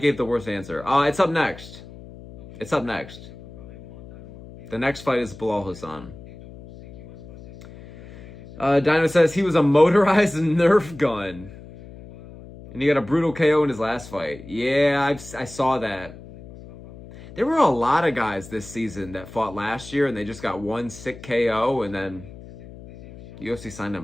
the worst answer. It's up next. It's up next. The next fight is Bilal Hassan. Dino says he was a motorized Nerf gun. And he got a brutal KO in his last fight. Yeah, I saw that. There were a lot of guys this season that fought last year and they just got one sick KO and then UFC signed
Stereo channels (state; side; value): noise; left; hum, 17 dB below the sound